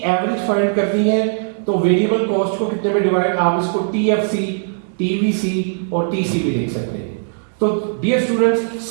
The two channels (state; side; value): silent; left; digital silence